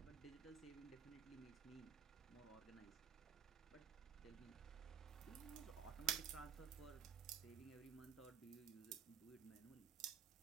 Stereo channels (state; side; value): quieter; left; 8.6 dB